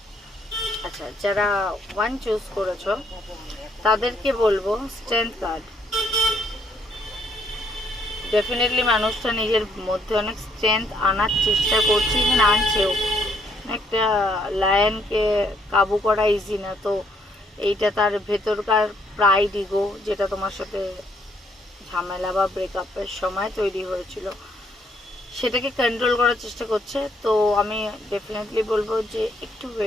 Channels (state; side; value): normal; both; correlation 0.69